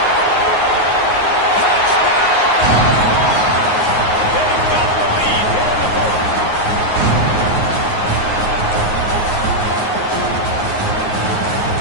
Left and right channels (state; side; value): late; right; 9.5 ms